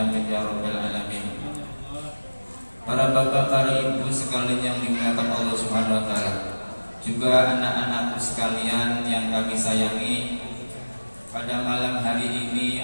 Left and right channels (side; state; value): both; inverted; correlation -1.00